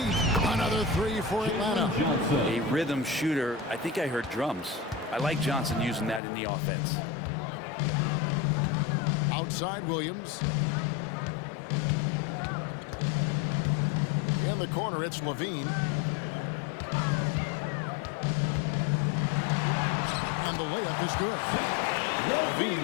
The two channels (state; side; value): drops out; right; at 6.2 s